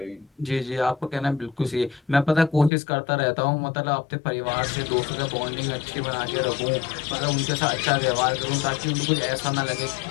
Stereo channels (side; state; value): right; drops out; at 2.7 s